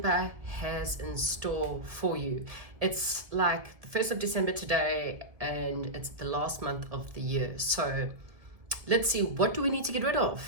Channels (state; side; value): late; left; 1.7 ms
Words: has in store for you. It's like the 1st of December today and it's the last month of the year. So let's see, what do we need to get rid